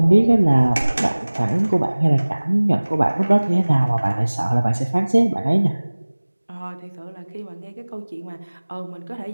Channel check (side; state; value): both; inverted; correlation -1.00